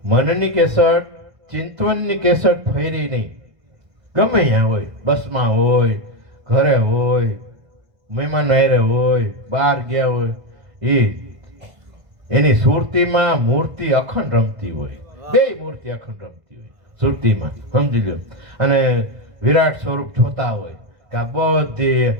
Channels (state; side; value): late; left; 1.5 ms